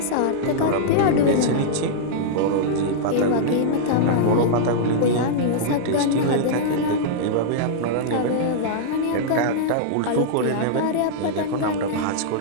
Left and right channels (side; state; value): both; different; correlation -0.01